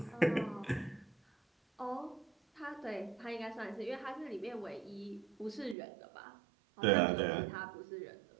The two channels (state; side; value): drops out; left; at 5.8 s